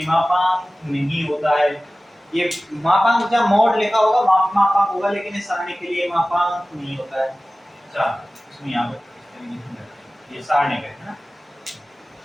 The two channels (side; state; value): both; normal; correlation 0.97